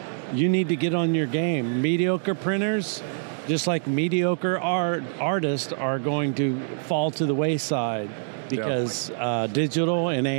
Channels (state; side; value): silent; left; digital silence